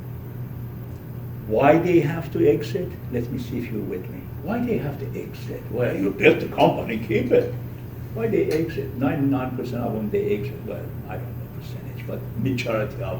Why they have to exit? Let me see if you're with me. Why they have to exit? Well, you built the company, keep it. Why they exit? 99% of them they exit. Well, I don't know percentage, but majority of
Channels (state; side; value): identical; both; correlation 1.00